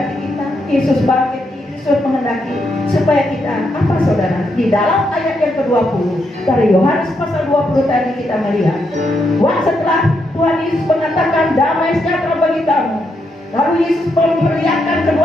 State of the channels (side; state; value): both; normal; correlation 0.80